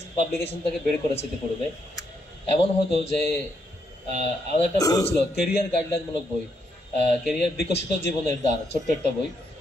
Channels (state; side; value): normal; both; correlation 0.77